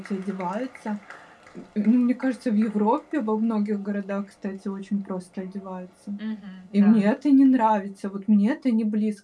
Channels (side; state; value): both; identical; correlation 1.00